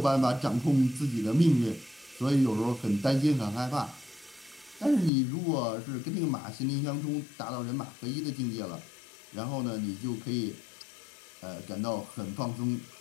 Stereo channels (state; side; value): drops out; right; at 5.1 s